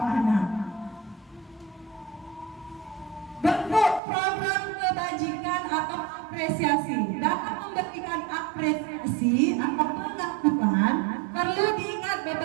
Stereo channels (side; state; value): left; drops out; at 4.0 s